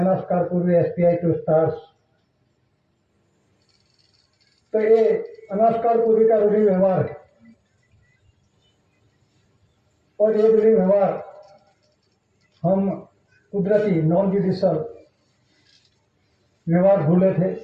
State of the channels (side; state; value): both; identical; correlation 1.00